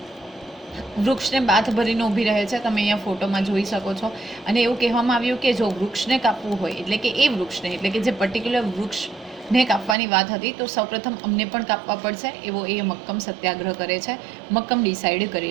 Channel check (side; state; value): left; drops out; at 10.0 s